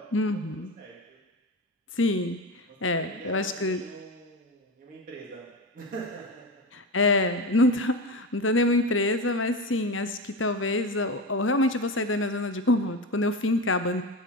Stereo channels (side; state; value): both; normal; correlation 0.22